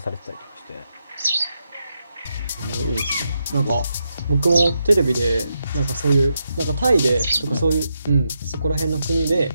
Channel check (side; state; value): both; inverted; correlation -0.84